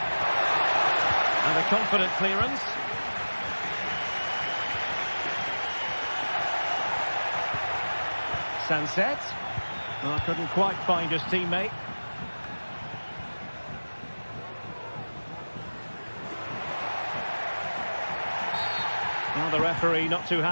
And a confident clearance. Sunset. Oh, couldn't quite find his teammate. Well, the referee not too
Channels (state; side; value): inverted; both; correlation -1.00